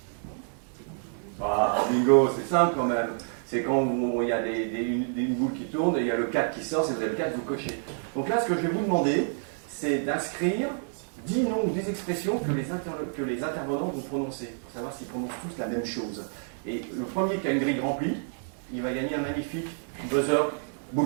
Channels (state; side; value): silent; left; digital silence